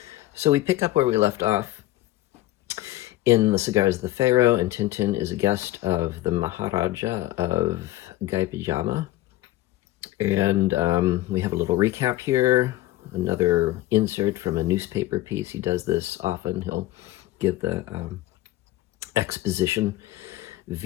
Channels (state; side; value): quieter; right; 16.3 dB